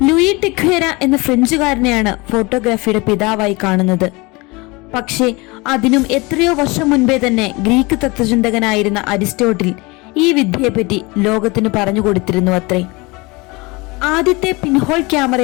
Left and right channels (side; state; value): right; quieter; 25.2 dB